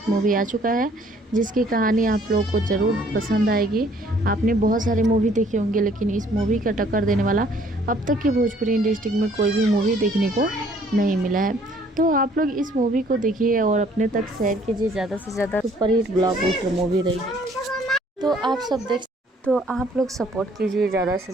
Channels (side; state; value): both; normal; correlation 0.60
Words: मूवी आ चुका है जिसकी कहानी आप लोगों को ज़रूर पसंद आएगी। आपने बहुत सारे मूवी देखे होंगे लेकिन इस मूवी का टक्कर देने वाला अब तक की भोजपुरी इंडस्ट्री में कोई भी मूवी देखने को नहीं मिला है। तो आप लोग इस मूवी को देखिए और अपने तक शेयर कीजिए। ज़्यादा से ज़्यादा सुपरहिट ब्लॉकबस्टर मूवी रही है, तो आप लोग सपोर्ट कीजिए ज़्यादा से